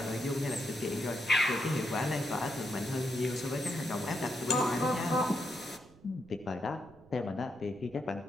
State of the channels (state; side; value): noise; right; rumble, 24 dB below the sound